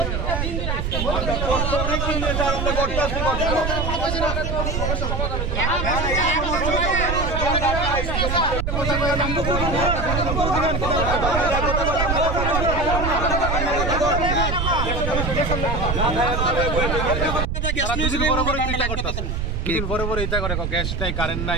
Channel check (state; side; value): noise; right; rumble, 1 dB below the sound